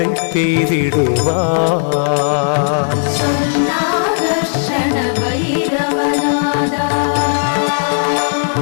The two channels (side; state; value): right; silent; digital silence